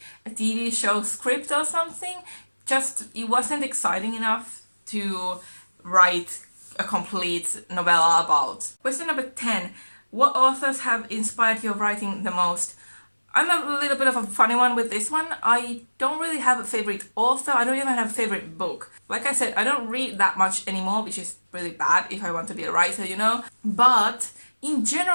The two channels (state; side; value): inverted; both; correlation -1.00